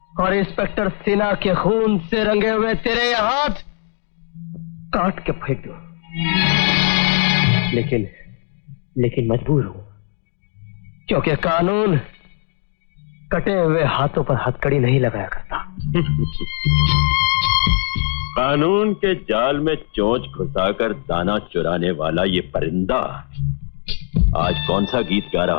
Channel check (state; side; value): silent; right; 56 dB below the other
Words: और इंस्पेक्टर सिन्हा के खून से रंगे हुए तेरे ये हाथ काट के फेंक दो, लेकिन मजबूर हूं, क्योंकि कानून कटे हुए हाथों पर हथकड़ी नहीं लगाया करता। कानून के जाल में चोंच घुसाकर दाना चुराने वाला ये परिंदा आज कौन सा गीत गा